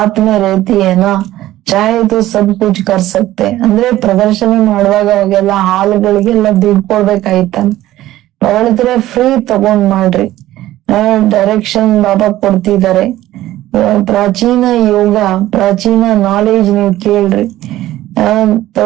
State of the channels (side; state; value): left; quieter; 15.0 dB